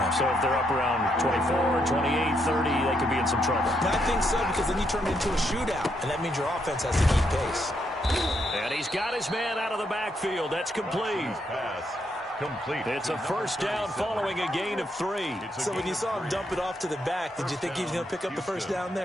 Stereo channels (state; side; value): normal; both; correlation 0.77